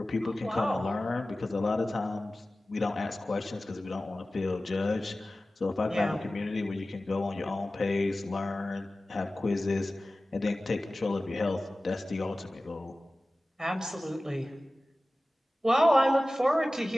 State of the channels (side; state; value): both; normal; correlation 0.96